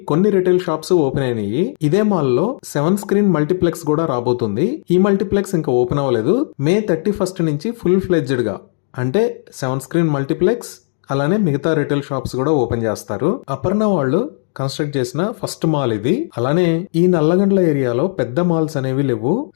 కొన్ని రిటైల్ షాప్స్ ఓపెన్ అయినాయి. ఇదే మాల్ లో 7 స్క్రీన్ మల్టీప్లెక్స్ కూడా రాబోతుంది. ఈ మల్టీప్లెక్స్ ఇంకా ఓపెన్ అవ్వలేదు. May 31st నుంచి ఫుల్ ఫ్లెడ్జ్డ్ గా అంటే 7 స్క్రీన్ మల్టీప్లెక్స్ అలానే మిగతా రిటైల్ షాప్స్ కూడా ఓపెన్ చేస్తారు. అపర్ణ వాళ్ళు కన్స్ట్రక్ట్ చేసిన ఫస్ట్ మాల్ ఇది. అలానే ఈ నల్లగండ్ల ఏరియాలో పెద్ద మాల్స్ అనేవి లేవు.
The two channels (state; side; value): silent; right; 63 dB below the other